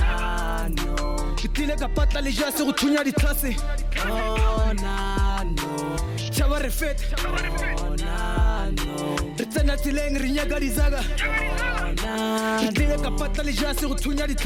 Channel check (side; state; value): both; identical; correlation 1.00